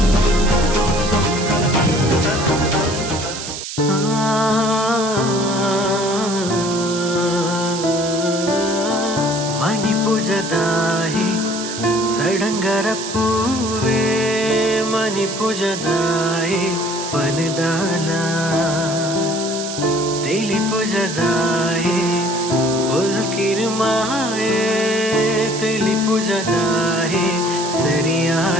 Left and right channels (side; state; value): right; noise; hiss, 8 dB below the sound